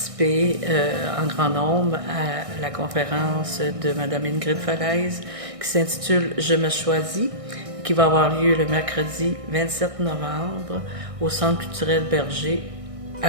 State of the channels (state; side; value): late; left; 1.6 ms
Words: en grand nombre à la conférence de Mme Ingrid Falaise qui s'intitule « Je me choisis », qui va avoir lieu le mercredi 27 novembre au Centre culturel Berger à